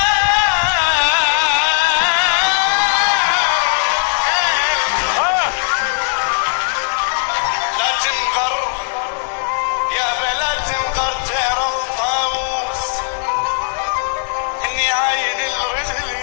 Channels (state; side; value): silent; right; 68 dB below the other